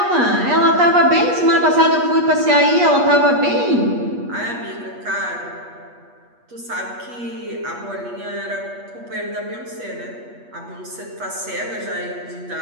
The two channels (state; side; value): late; left; 8.3 ms